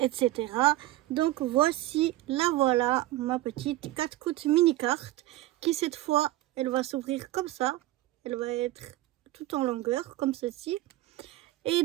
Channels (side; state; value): left; quieter; 16.6 dB